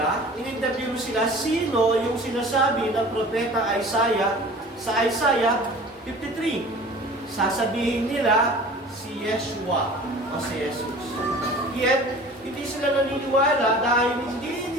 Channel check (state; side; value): normal; both; correlation 0.43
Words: in-interview mo sila, sino yung sinasabi ng propeta Isaiah sa Isaiah 53? Sasabihin nila si Yeshua o si Jesus. Yet, hindi sila naniniwala dahil